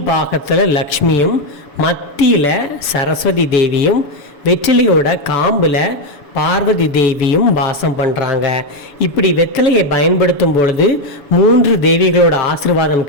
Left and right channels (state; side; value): late; right; 7.0 ms